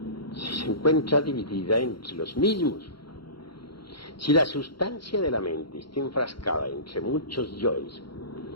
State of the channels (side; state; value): right; late; 0.73 ms